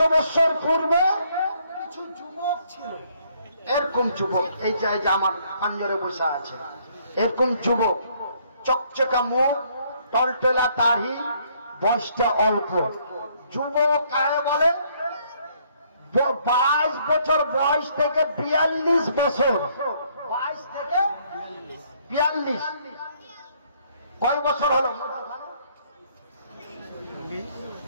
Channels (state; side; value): inverted; both; correlation -0.66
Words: বছর পূর্বে কিছু যুবক ছিল, এরকম যুবক, এই যে আমার পাঞ্জরে বসে আছে, এরকম যুবক, চকচকা মুখ, টলটলা দাড়ি, বয়সটা অল্প। যুবক কাকে বলে? 22 বছর বয়স থেকে 42 বছর, 22 থেকে 42, কয় বছর হলো?